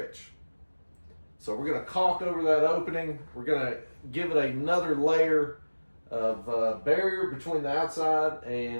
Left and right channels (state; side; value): inverted; both; correlation -1.00